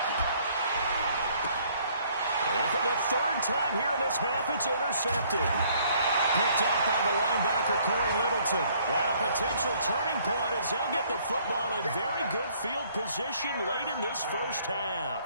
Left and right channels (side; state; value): both; inverted; correlation -0.62